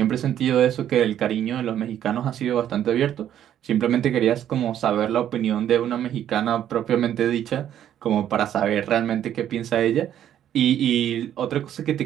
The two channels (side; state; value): left; quieter; 10.7 dB